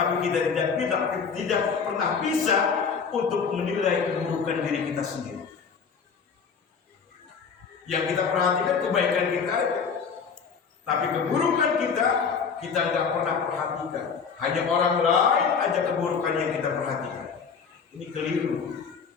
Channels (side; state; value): right; quieter; 5.9 dB